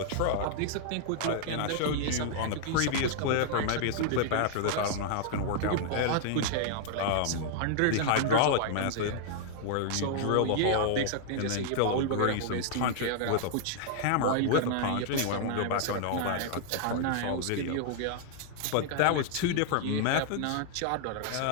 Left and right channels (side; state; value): both; different; correlation 0.00